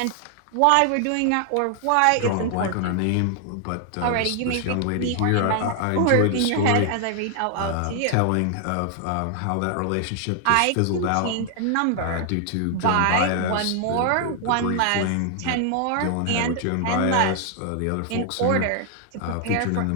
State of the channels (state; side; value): different; both; correlation 0.00